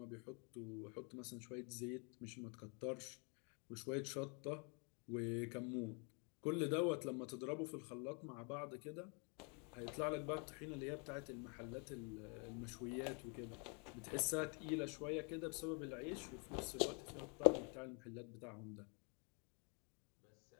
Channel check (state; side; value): quieter; right; 35.7 dB